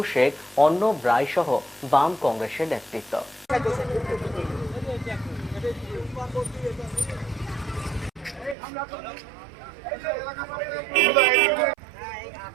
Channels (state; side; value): drops out; left; at 8.6 s